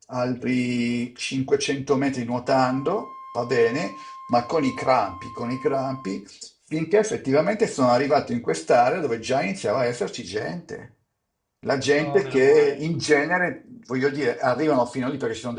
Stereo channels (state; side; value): identical; both; correlation 1.00